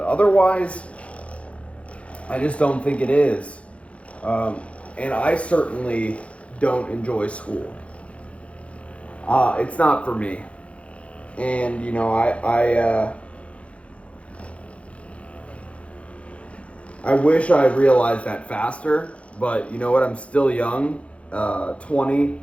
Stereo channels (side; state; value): right; late; 0.062 ms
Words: I just don't think it is. And I certainly don't enjoy school. It's not for me. And, I wish I realized that faster. But you know what? I'm still young. 20.